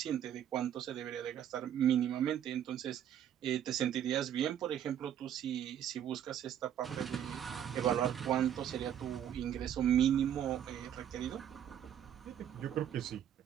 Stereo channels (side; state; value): left; quieter; 10.0 dB